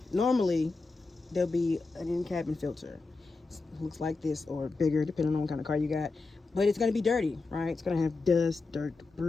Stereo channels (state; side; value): quieter; right; 3.8 dB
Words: normally there'll be an in-cabin filter. It looks like this or bigger, depending on what kind of car you got. But it's gonna be dirty, right? It's gonna have dust, dirt,